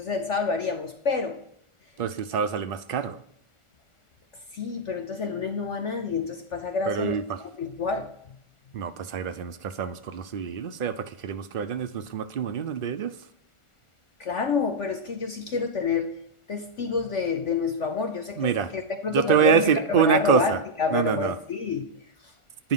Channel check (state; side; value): late; right; 1.4 ms